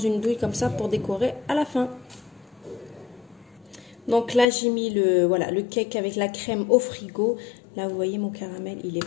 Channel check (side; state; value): right; drops out; at 4.5 s